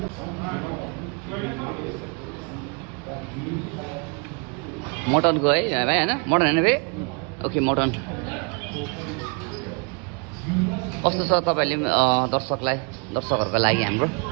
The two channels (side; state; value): left; quieter; 32.7 dB